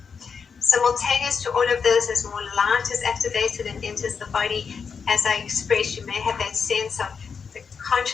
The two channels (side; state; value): right; quieter; 6.0 dB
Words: Simultaneous to all of this, as more light is activated and enters the body, as I expressed, you may have that sense of the